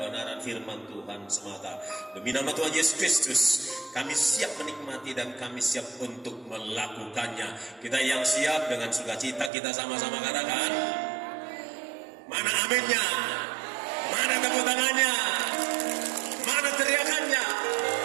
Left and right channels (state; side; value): drops out; left; at 9.5 s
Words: firman Tuhan semata. Demi nama Tuhan Yesus Kristus, kami siap menikmati dan kami siap untuk melakukannya. Kita yang siap dengan sukacita, kita sama-sama katakan, mana aminnya? Mana tepuk tangannya? Mana teriakannya?